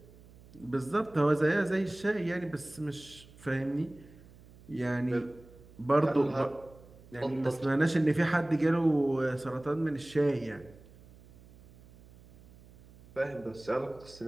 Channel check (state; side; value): noise; right; hum, 23 dB below the sound